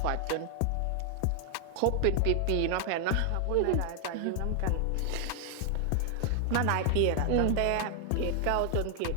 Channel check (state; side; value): different; both; correlation 0.00